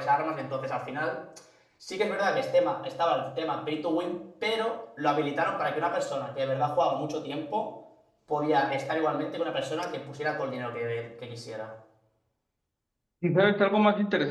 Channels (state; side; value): identical; both; correlation 1.00